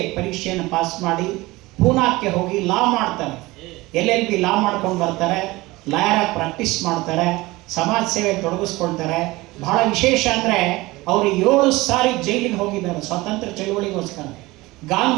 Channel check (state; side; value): quieter; left; 20.6 dB